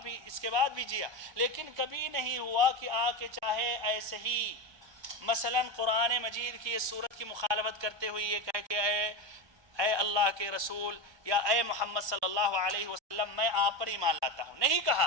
کے بعد بھی جیا، لیکن کبھی نہیں ہوا کہ آ کے چاہے ایسے ہی مثلا قرآن مجید کی اس صورت کی مخالفت کرتے ہوئے یہ کہے کہ اے اللہ کے رسول یا اے محمد صلی اللہ علیہ وسلم میں آپ پر ایمان لاتا ہوں، نہیں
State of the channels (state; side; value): late; left; 1.2 ms